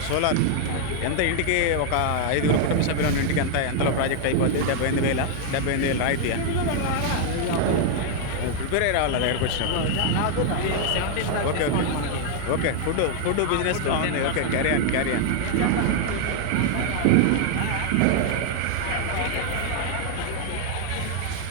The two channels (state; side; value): different; both; correlation 0.00